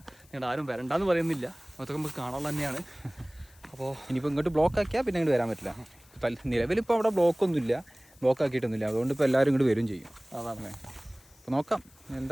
നിങ്ങൾ ആരും വരണ്ടെന്ന് പറയുന്നില്ല, അതൊക്കെ നമുക്ക് കാണാനുള്ള തന്നെയാണ്. അപ്പോൾ ഇനിയിപ്പോൾ ഇങ്ങോട്ട് ബ്ലോക്ക് ആക്കിയാൽ പിന്നെ ഇങ്ങോട്ട് വരാൻ പറ്റില്ല. നിലവിലിപ്പോൾ അവിടെ ബ്ലോക്കൊന്നുമില്ല, ബ്ലോക്ക് ആക്കിയിട്ടൊന്നുമില്ല. അതുകൊണ്ട് ഇപ്പോൾ എല്ലാവരും ഇങ്ങോട്ട് വരും ചെയ്യും. അതാണ്. അപ്പോൾ നോക്കാം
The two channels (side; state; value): left; noise; hiss, 28 dB below the sound